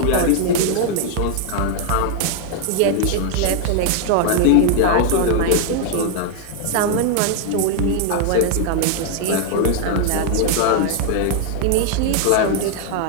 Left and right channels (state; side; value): different; both; correlation 0.00